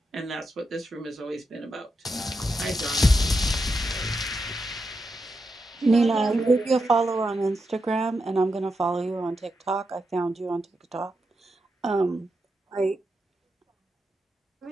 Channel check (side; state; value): both; normal; correlation 0.86